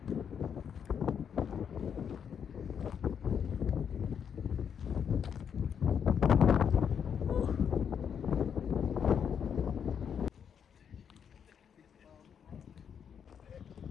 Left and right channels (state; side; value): quieter; right; 7.7 dB